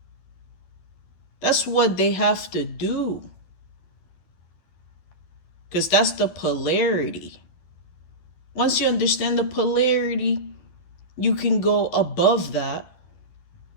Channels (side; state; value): right; late; 11 ms